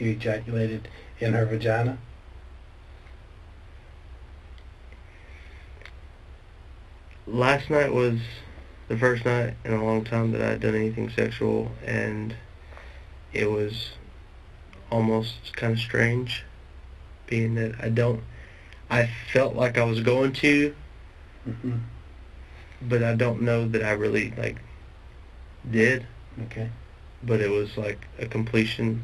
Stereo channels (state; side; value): identical; both; correlation 1.00